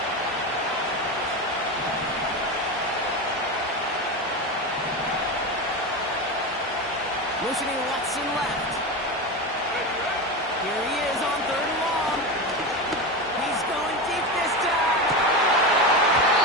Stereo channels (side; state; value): both; normal; correlation 0.20